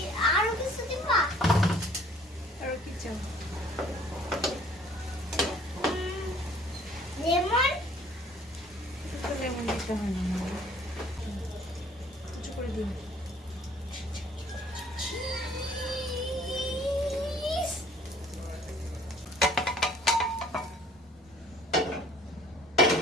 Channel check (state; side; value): normal; both; correlation 0.56